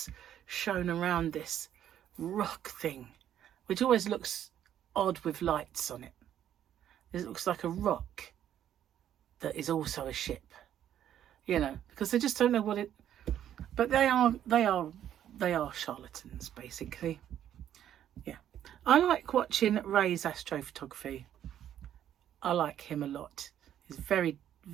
shown around this rock thing, which always looks odd with lights on it. It looks like a rock that is also a ship, you know, because they just don't know what it. But they are charlatans, basically. Yeah, I like watching Ray's astrophotography. I like him a lot. He's very,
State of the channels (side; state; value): left; quieter; 10.7 dB